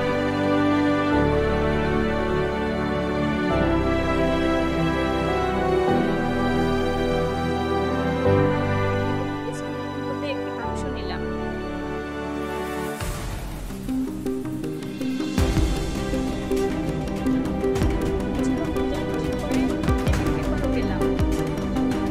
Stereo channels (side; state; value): both; identical; correlation 1.00